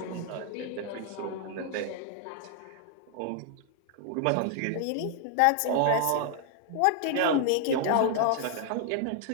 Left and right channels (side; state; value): both; different; correlation 0.00